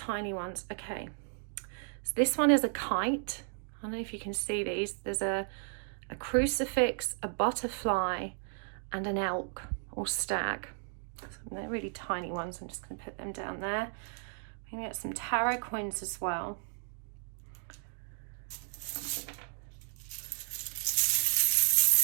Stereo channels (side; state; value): left; silent; 55 dB below the other